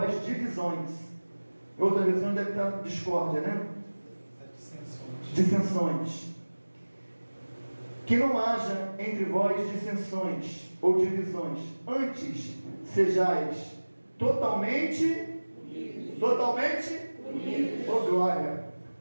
divisões. Outra versão deve estar discórdia, né? Dissensões. Que não haja entre vós dissensões ou divisões. Antes, sejais totalmente unidos. Oh, glória!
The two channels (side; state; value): both; inverted; correlation -1.00